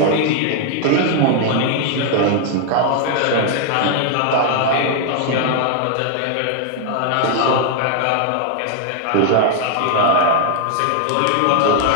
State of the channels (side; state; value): both; different; correlation 0.00